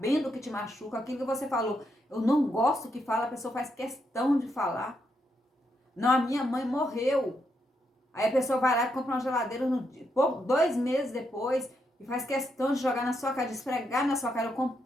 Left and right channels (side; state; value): both; normal; correlation 0.80